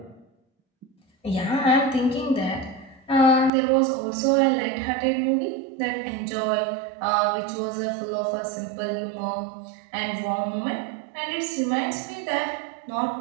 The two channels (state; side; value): drops out; left; at 3.5 s